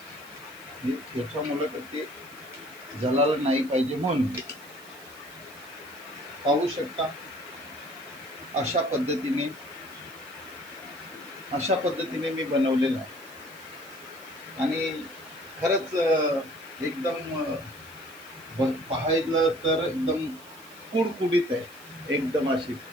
याच्यामुळं तर ते जळालं नाही पाहिजे म्हणून. पाहू शकता अशा पद्धतीने मी बनवलेलं आहे. आणि खरंच एकदम पाहायला तर एकदम कुडकुडीत आहे, एकदम अशी.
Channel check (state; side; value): noise; right; hiss, 22 dB below the sound